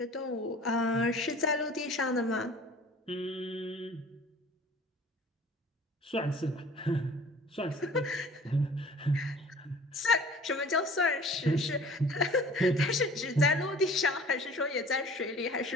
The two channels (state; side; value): normal; both; correlation 0.47